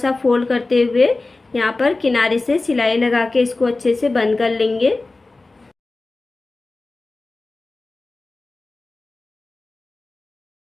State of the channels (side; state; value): right; quieter; 3.3 dB